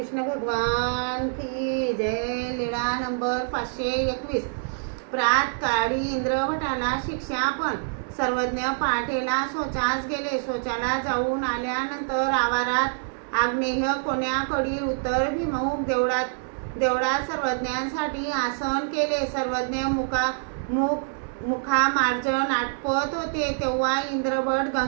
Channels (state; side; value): silent; left; 61 dB below the other